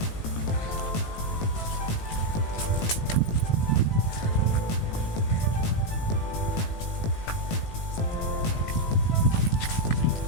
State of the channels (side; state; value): right; late; 18 ms